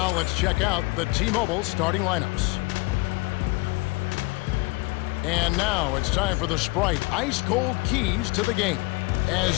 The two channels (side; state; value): right; quieter; 24.6 dB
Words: let's check out the T-Mobile starting lineups. And now it's time for the Sprite ice-cold keys to the game.